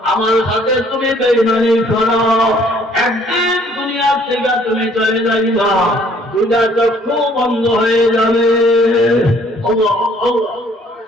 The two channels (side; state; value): both; normal; correlation 0.60